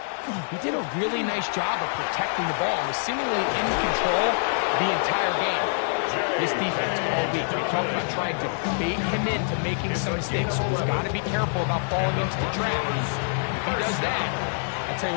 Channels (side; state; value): right; silent; 61 dB below the other